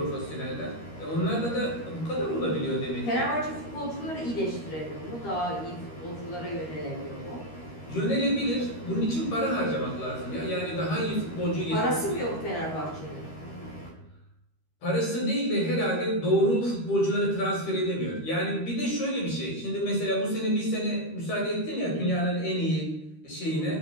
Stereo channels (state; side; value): late; right; 13 ms